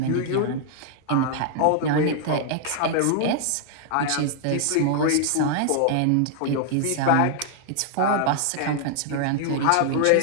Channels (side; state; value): both; different; correlation -0.01